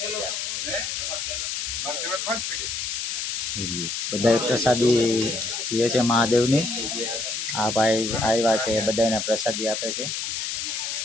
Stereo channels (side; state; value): left; noise; hiss, 3 dB below the sound